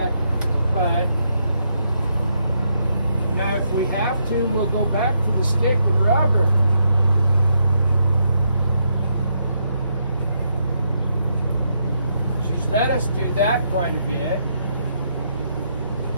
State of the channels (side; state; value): both; inverted; correlation -0.78